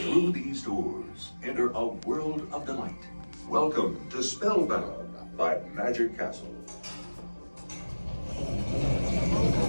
Through these doors, enter a world of delight. Welcome to Spellbound by Magic Castle.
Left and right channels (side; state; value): both; inverted; correlation -1.00